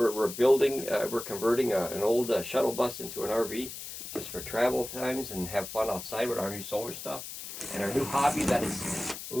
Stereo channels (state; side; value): noise; left; hiss, 10 dB below the sound